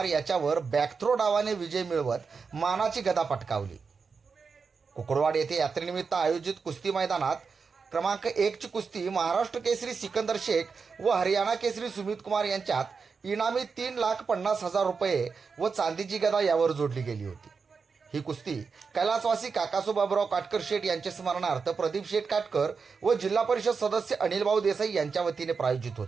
याच्यावर बॅकथ्रो डावाने विजय मिळवत मानाची गदा पटकावली. कुकडवाड येथे यात्रेनिमित्त आयोजित कुस्ती मैदानात क्रमांक 1 ची कुस्ती महाराष्ट्र केसरी सिकंदर शेख व हरियाणा केसरी सुमित कुमार यांच्यात इनामी 3,50,000 रुपये व चांदीची गदा यावर जोडली गेली होती. ही कुस्ती कैलासवासी काकासू बाबूराव काटकर शेठ यांच्या स्मरणार्थ प्रदीप शेठ काटकर व जिल्हा परिषद सदस्य अनिलभाऊ देसाई यांच्या वतीने प्रायोजित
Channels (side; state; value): left; quieter; 5.2 dB